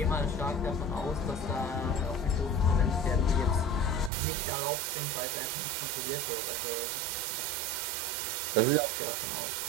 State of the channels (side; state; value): left; drops out; at 4.1 s